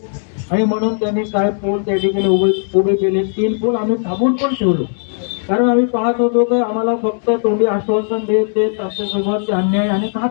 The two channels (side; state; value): right; silent; digital silence